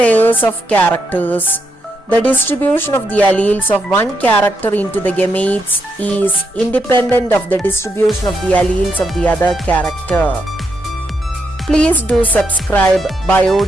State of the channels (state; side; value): normal; both; correlation 0.80